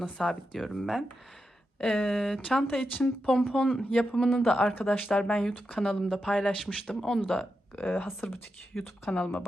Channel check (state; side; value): normal; both; correlation 0.87